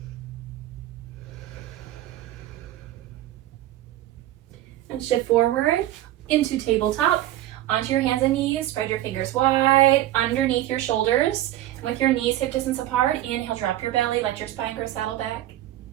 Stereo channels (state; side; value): quieter; left; 14.2 dB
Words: And shift forward into tabletop. Onto your hands and knees, spread your fingers wide, underneath your shoulders. And with your knees hip distance apart, inhale, drop your belly, let your spine grow, saddle back.